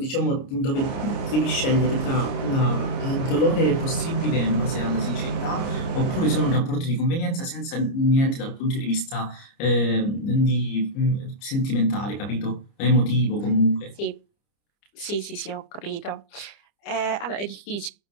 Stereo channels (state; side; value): late; right; 29 ms